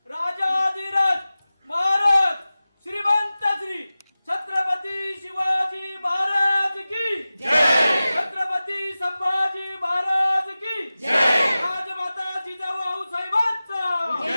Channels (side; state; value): both; inverted; correlation -0.96